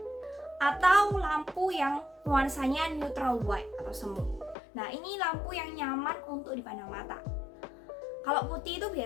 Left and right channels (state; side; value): drops out; right; at 4.5 s